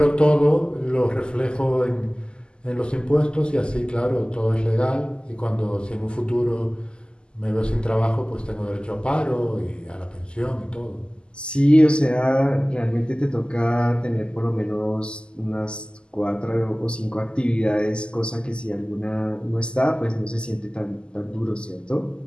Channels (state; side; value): late; right; 0.049 ms